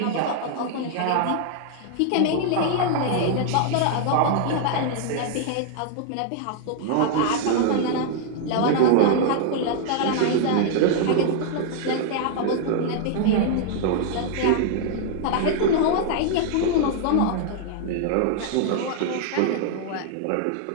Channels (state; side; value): different; both; correlation 0.00